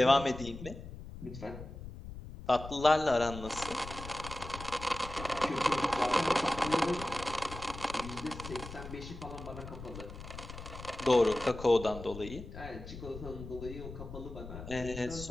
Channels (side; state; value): left; noise; rumble, 12 dB below the sound